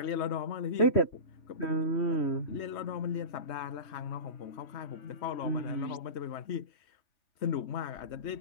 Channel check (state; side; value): late; right; 3.2 ms